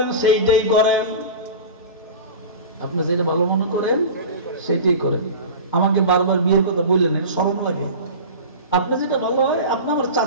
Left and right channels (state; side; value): inverted; both; correlation -0.32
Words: সেইটাই করেন, আপনি যেটা ভালো মনে করেন সেটাই করেন। আমাকে বারবার বিয়ের কথা বললেন, শরম লাগে। আপনি যেটা ভালো হয়, আপনি আমার